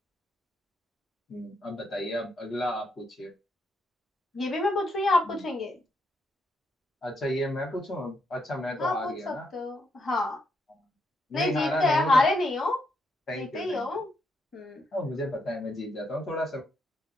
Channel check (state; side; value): normal; both; correlation 0.78